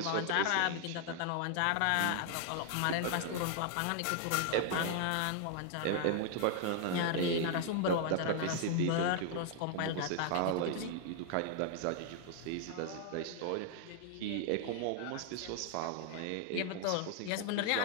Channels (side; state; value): both; different; correlation 0.00